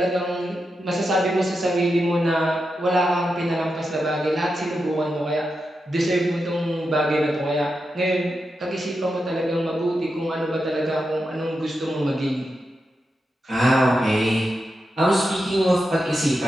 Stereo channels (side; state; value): both; normal; correlation 0.88